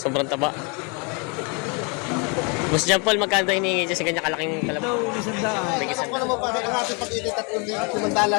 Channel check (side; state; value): right; quieter; 32.9 dB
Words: taba. Boss John Paul, magkano tayo hinihingi dyan sa ganyan kalaking kalabaw? Ito, isang daan. Ako naman pa, ang ating pag-ilit at kumandala